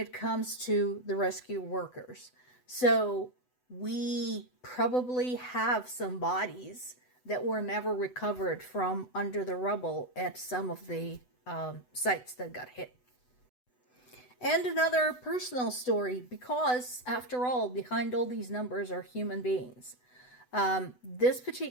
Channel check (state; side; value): late; right; 8.0 ms